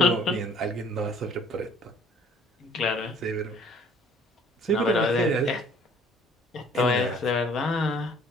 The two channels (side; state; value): both; normal; correlation 0.56